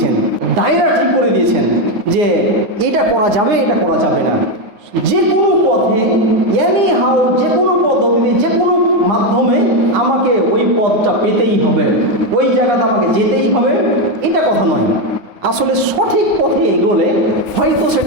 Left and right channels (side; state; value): left; late; 9.8 ms